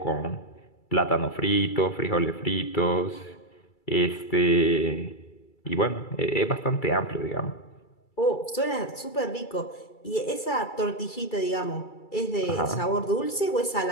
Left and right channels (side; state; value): right; late; 2.3 ms